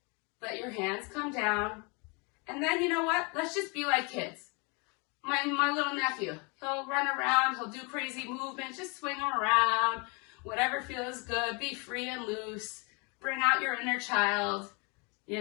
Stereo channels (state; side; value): quieter; right; 31.8 dB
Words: Let your hands come down. And then, you know what? Let's just be like kids. My little nephew, he'll run around, he'll do crazy movements, just swing him around, whatever feels good, be free and loose, bring out your inner child. You